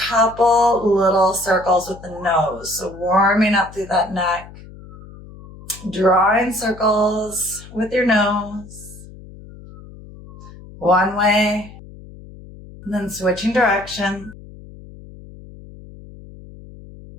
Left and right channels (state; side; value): noise; left; hum, 18 dB below the sound